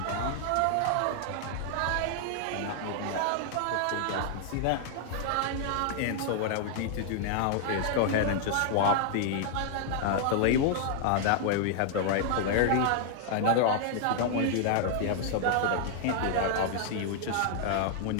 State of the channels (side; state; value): both; different; correlation -0.01